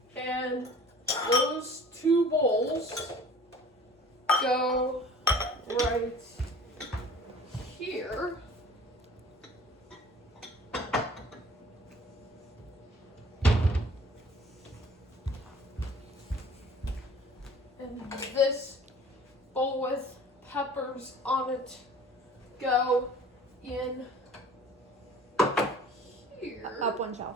and those two bowls go right here. And this bowl with peppers on it go in here. Up one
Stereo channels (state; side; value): normal; both; correlation 0.48